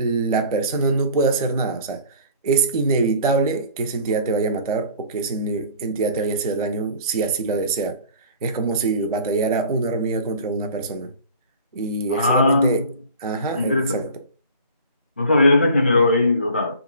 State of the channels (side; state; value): both; inverted; correlation -0.44